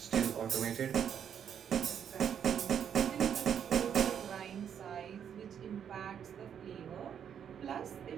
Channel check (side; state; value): left; quieter; 8.4 dB